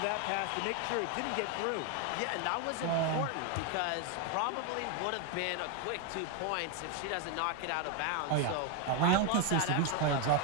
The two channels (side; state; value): both; different; correlation 0.01